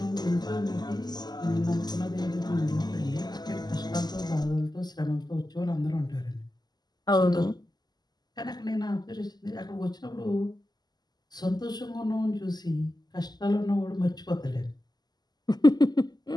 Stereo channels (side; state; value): right; late; 0.20 ms